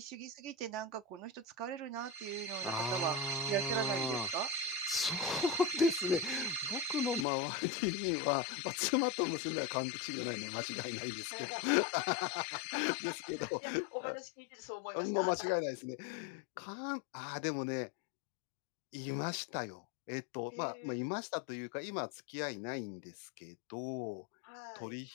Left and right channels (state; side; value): drops out; right; at 7.2 s